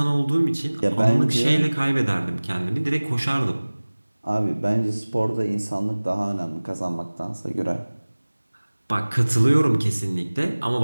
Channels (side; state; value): both; inverted; correlation -1.00